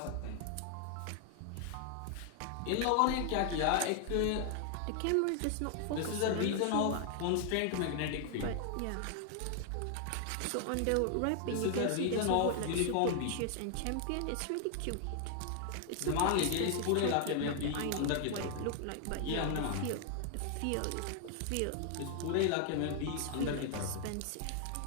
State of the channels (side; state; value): both; different; correlation 0.00